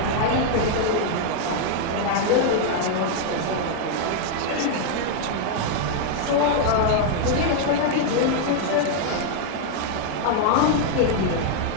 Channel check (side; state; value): both; different; correlation 0.00